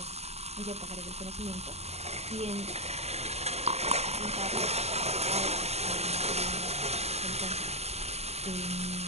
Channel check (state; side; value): late; left; 0.31 ms